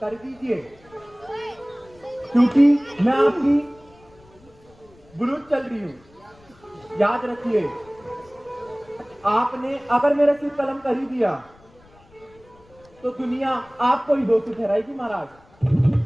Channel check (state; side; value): noise; left; rumble, 28 dB below the sound